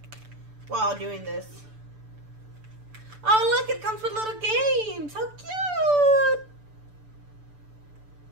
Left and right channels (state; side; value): late; left; 6.9 ms